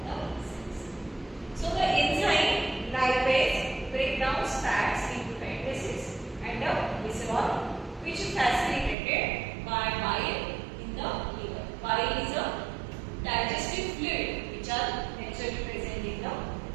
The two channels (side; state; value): left; drops out; at 9.0 s